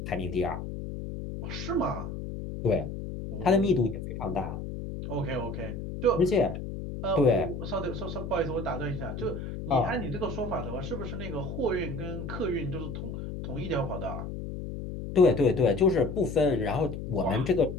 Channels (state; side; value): noise; left; hum, 7 dB below the sound